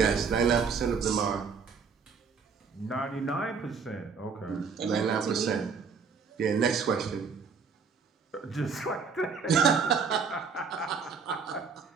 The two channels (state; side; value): quieter; left; 5.6 dB